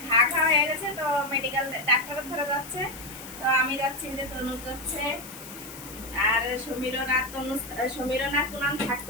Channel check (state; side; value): noise; left; hiss, 14 dB below the sound